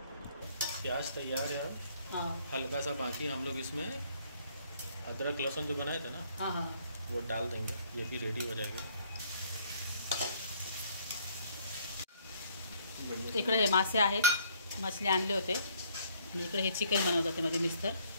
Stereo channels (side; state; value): both; inverted; correlation -0.63